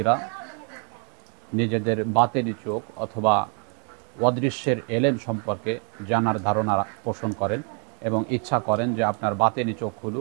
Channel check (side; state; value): left; quieter; 39.8 dB